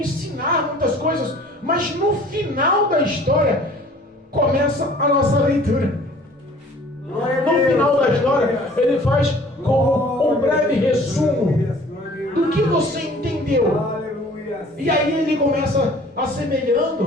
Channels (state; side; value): normal; both; correlation 0.51